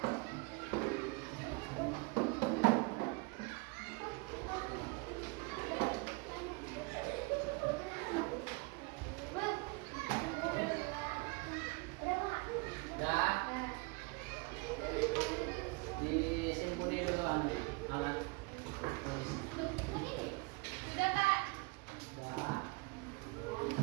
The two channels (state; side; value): quieter; left; 28.0 dB